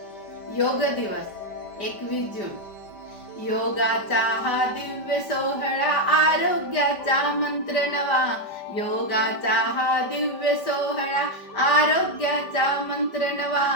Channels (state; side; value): late; right; 5.1 ms